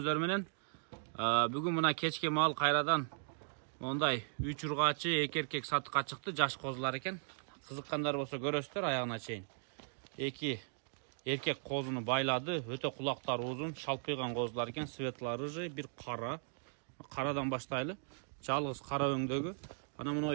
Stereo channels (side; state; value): left; silent; digital silence